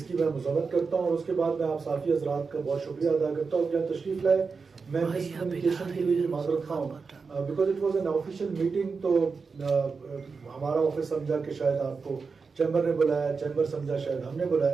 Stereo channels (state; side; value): quieter; left; 4.9 dB